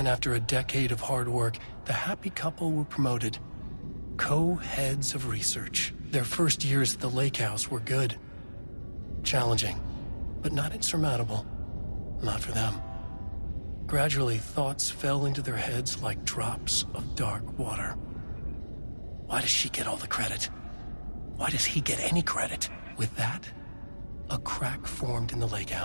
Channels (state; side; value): inverted; both; correlation -1.00